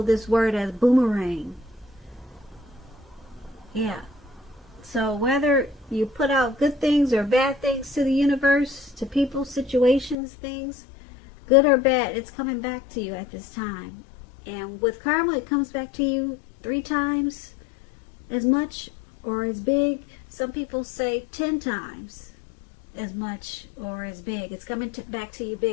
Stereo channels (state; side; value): drops out; right; at 10.2 s